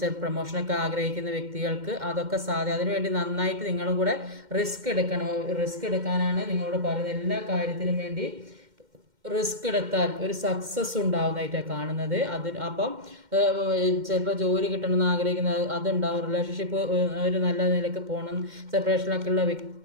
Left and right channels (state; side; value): late; left; 2.1 ms